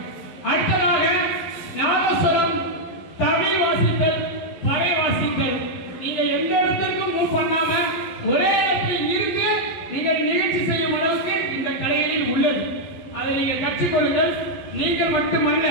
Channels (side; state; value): right; late; 11 ms